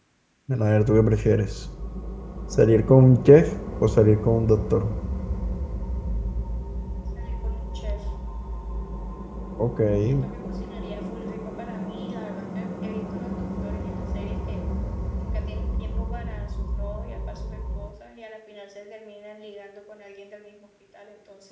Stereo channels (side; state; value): both; identical; correlation 1.00